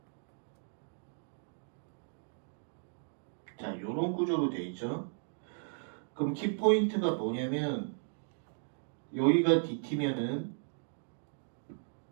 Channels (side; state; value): left; silent; digital silence